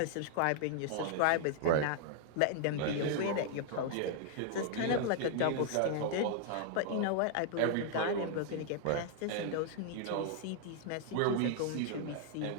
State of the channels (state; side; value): different; both; correlation -0.01